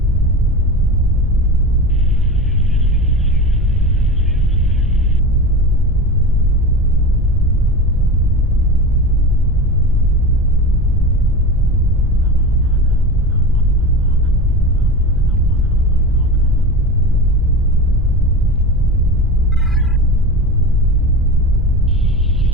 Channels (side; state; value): right; noise; rumble, 15 dB below the sound